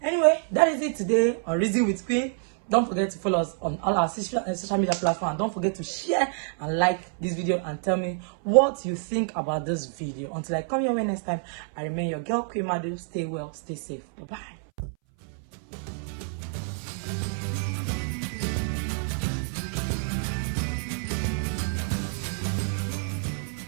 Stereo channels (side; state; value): left; silent; 60 dB below the other